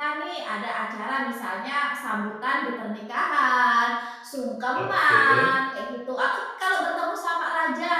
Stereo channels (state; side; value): identical; both; correlation 1.00